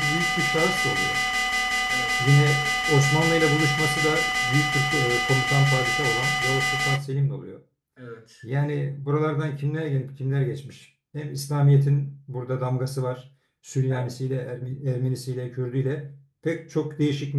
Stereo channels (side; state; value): both; identical; correlation 1.00